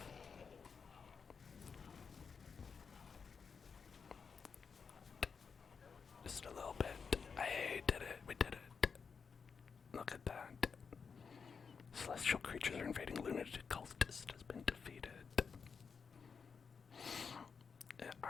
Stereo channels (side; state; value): right; quieter; 5.8 dB